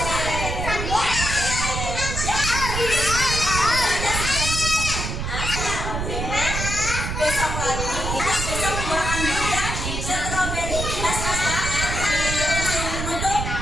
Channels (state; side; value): noise; right; rumble, 3 dB below the sound